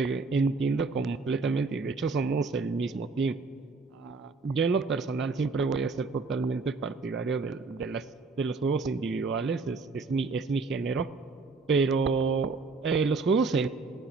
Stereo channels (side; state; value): left; quieter; 4.1 dB